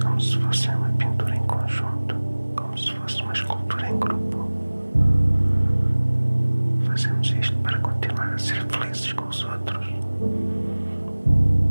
se fosse uma pintura em conjunto, como se fosse uma escultura em grupo. Fazemos isto para continuar a ser felizes com os outros.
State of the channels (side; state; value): both; inverted; correlation -1.00